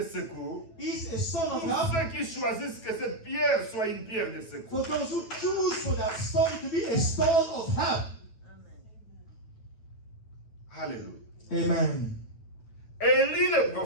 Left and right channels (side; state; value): right; late; 9.1 ms